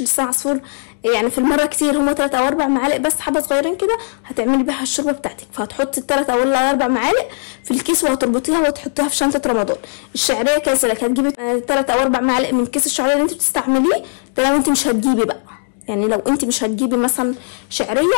لسان عصفور يعني في المره كتير، هما 3 أو 4 معالق بس، حبه صغيرين كده هتعملي بيها الشوربه بتاعتك، فهتحطي 3 أو 4 معالق في الكيس وهتربطيها وتحطيها في شنطه رمضان. الشعريه كذلك هتجيبي 3 أو 4 معالق من كيس الشعريه اللي انت بتستعمليه ده، لو انت مش هتجيبي بقى، يعني لو انت مش هتجيبي مثلا شعريه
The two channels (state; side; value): silent; right; digital silence